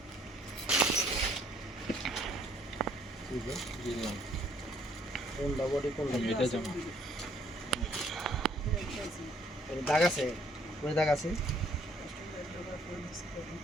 কোনটা বডি, কোনটা এটা জামা, দাগ আছে, ওই দাগ আছে,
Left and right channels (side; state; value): both; normal; correlation 0.64